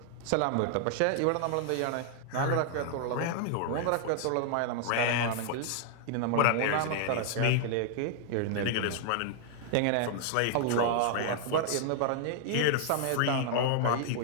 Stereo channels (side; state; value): both; different; correlation -0.01